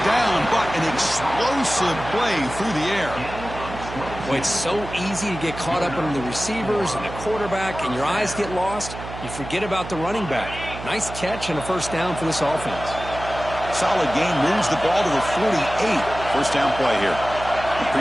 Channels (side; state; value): right; noise; hum, 11 dB below the sound